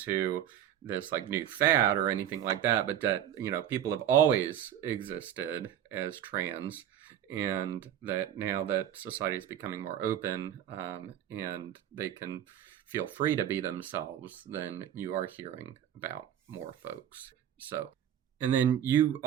this like new fad or anything like that, but that, you know, people have always existed as trans, and that now that society is becoming more open, and they can feel free to be themselves, then you are hearing about more folks. So, and then you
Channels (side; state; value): left; quieter; 10.6 dB